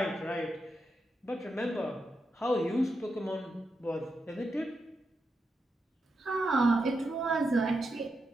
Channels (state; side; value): normal; both; correlation 0.86